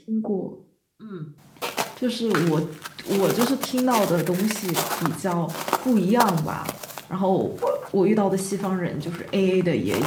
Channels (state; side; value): identical; both; correlation 1.00